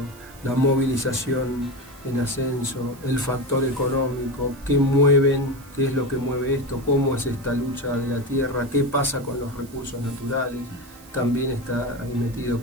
la movilización en ascenso, el factor económico, qué es lo que mueve esto, cómo es esta lucha de la tierra, qué pasa con los recursos naturales, también está ahí metido,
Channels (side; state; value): right; noise; hiss, 23 dB below the sound